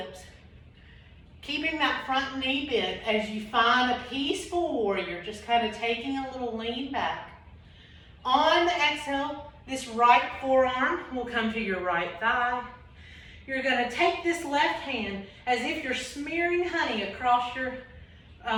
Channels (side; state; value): both; identical; correlation 1.00